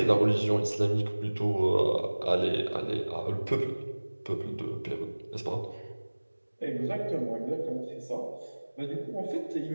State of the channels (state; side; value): inverted; both; correlation -1.00